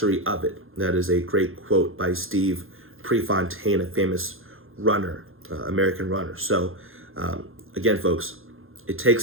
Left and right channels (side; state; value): left; late; 0.60 ms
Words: of it. That is a great quote by Steve Prefontaine, a famous runner, American runner. So again, folks, it